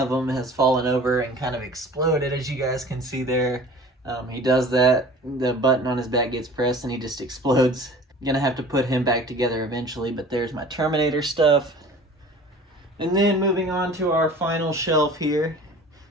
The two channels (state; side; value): normal; both; correlation 0.44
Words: them has fallen over and kind of exploded, as you guys can see there. He does that, the button on his back gets pressed and he just explodes. I'm gonna have to put him back together eventually, but there's my Terminator stuff. And then moving on to our final shelf here.